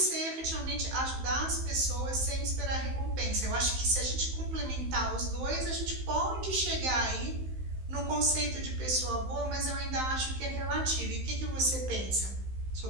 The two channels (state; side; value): late; left; 15 ms